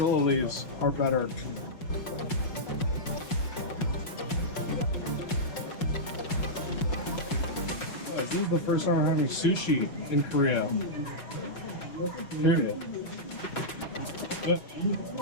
leaves are better. This is the first time I'm having sushi in Korea. Period. But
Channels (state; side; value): late; right; 5.5 ms